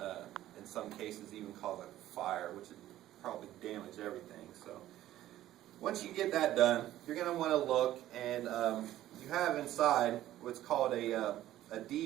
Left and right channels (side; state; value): left; quieter; 13.7 dB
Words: in some cases, even cause a fire, which would probably damage everything. So once you get that done, you're going to want to look, and you have inside what's called a